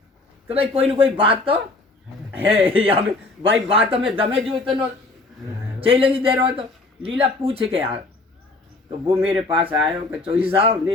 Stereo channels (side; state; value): right; quieter; 3.1 dB